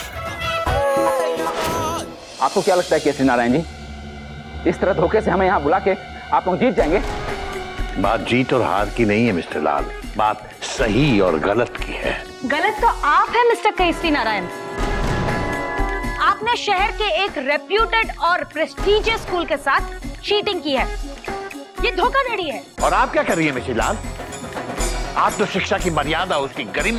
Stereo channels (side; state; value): both; identical; correlation 1.00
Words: आपको क्या लगता है केसरी नारायण जी, इस तरह धोखे से हमें यहाँ बुला के आप लोग जीत जाएंगे? बात जीत और हार की नहीं है मिस्टर लाल, बात सही और गलत की है। गलत तो आप है मिस्टर केसरी नारायण। आपने शहर के एक रेप्यूटेड और प्रेस्टीजियस स्कूल के साथ चीटिंग की है। ये धोखाधड़ी है। और आप क्या कर रही है मिसेस लाल? आप तो शिक्षा की मर्यादा, उसकी